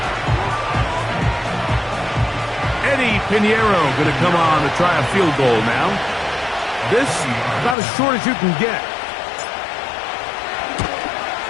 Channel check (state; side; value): drops out; right; at 7.8 s